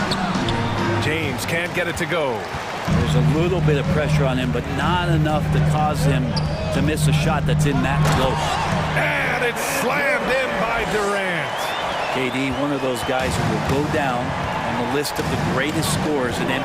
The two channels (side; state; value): both; identical; correlation 1.00